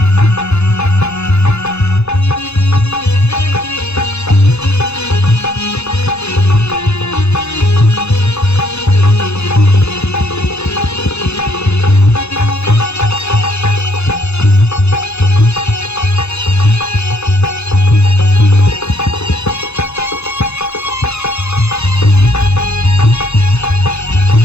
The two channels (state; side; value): late; right; 0.80 ms